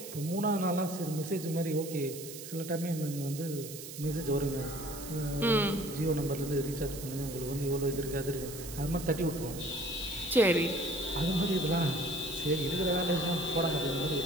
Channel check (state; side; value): noise; right; hiss, 11 dB below the sound